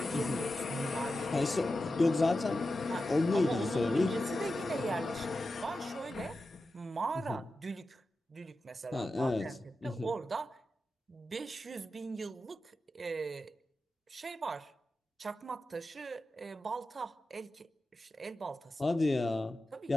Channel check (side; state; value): both; normal; correlation 0.91